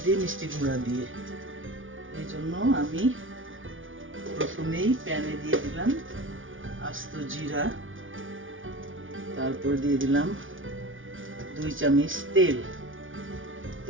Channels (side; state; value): left; late; 0.57 ms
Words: দিয়ে মিষ্টি কুমড়া দিয়ে। এই জন্য আমি প্রথমেই প্যানে দিয়ে দিলাম আস্ত জিরা, তারপর দিয়ে দিলাম 2 চামচ তেল।